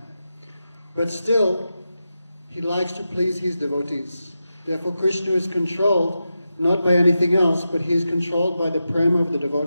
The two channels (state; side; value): inverted; both; correlation -0.90